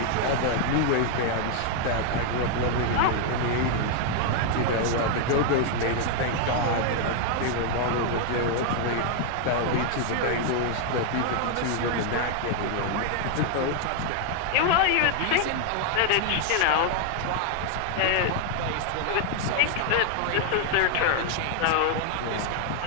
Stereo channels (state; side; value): different; both; correlation 0.00